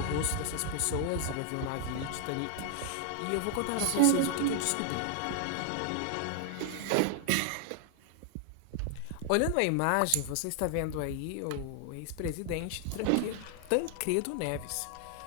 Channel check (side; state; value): both; different; correlation 0.00